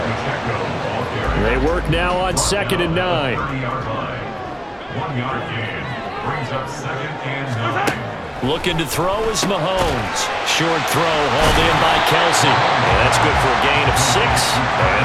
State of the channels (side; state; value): both; identical; correlation 1.00